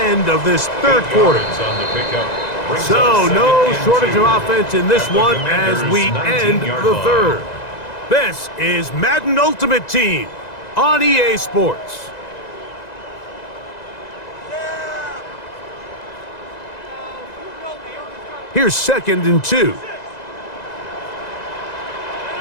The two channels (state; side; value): late; right; 2.0 ms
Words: of this 3rd quarter. So no shortage of offense in this one as we end the 3rd. This is Madden Ultimate Team on EA Sports. Here's 2nd and 2.